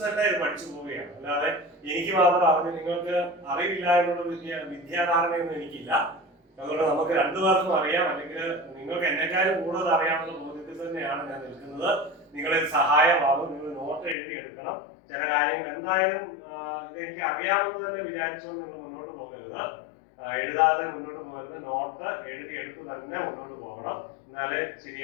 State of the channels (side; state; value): right; drops out; at 14.2 s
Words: തന്നെ ഇത് പഠിച്ചു പോവുകയാണ്. അല്ലാതെ എനിക്ക് മാത്രം അറിഞ്ഞ് നിങ്ങൾക്ക് അറിവില്ല എന്നുള്ള വിദ്യാധാരണയൊന്നും എനിക്കില്ല. അതുകൊണ്ട് നമുക്ക് രണ്ടുപേർക്കും അറിയാം, അല്ലെങ്കിൽ നിങ്ങൾക്ക് എന്നെക്കാളും കൂടുതൽ അറിയാമെന്ന ബോധ്യത്തിൽ തന്നെയാണ് ഞാൻ നിൽക്കുന്നത്. നിങ്ങളിൽ സഹായമാകും. നിങ്ങൾ നോട്ട് എഴുതി എടുക്കണം. ചില കാര്യങ്ങൾ എന്തായാലും ഇത് എനിക്ക് അറിയാമെന്ന് തന്നെ വിചാരിച്ചുകൊണ്ട് നിങ്ങൾ മുന്നോട്ട് പോകരുത്, എഴുതാതെ മുന്നോട്ട് പോകരുത്. നോട്ട് എഴുതി എടുത്ത് തന്നെ മുന്നോട്ട് പോകണം. എന്നാലേ